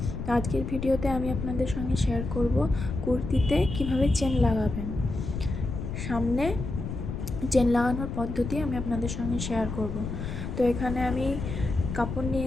আজকের ভিডিওতে আমি আপনাদের সঙ্গে শেয়ার করব কুর্তিতে কিভাবে চেন লাগাবেন। সামনে চেন লাগানোর পদ্ধতি আমি আপনাদের সঙ্গে শেয়ার করব। তো এখানে আমি কাপড়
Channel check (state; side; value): noise; left; rumble, 5 dB below the sound